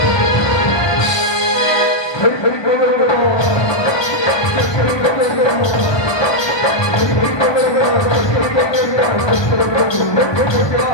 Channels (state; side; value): late; right; 1.2 ms